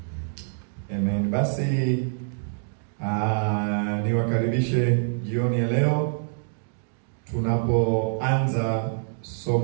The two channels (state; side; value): silent; left; digital silence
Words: Amen. Basi niwakaribishe jioni ya leo tunapoanza